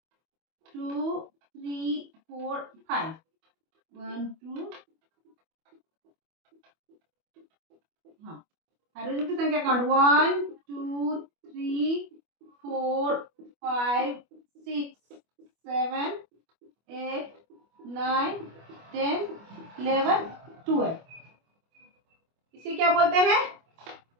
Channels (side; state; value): left; late; 25 ms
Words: 2 3 4 5 1 2 हाँ हाइड्रोजन की संख्या काउंट 1 2 3 4 5 6 7 8 9 10 11 12। इसे क्या बोलते हैं,